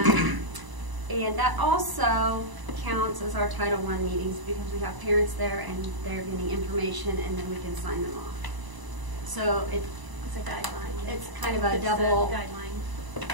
And that also counts as our Title I meetings because we have parents there and they're getting information and then we can sign them off. So it's a guideline. It's kind of a double guideline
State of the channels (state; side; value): late; left; 1.0 ms